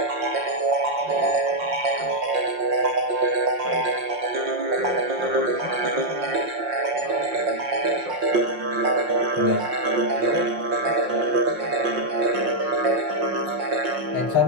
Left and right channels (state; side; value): late; left; 5.6 ms